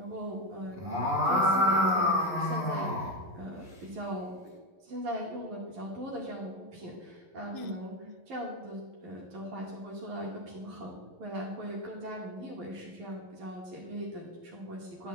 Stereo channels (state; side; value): late; left; 11 ms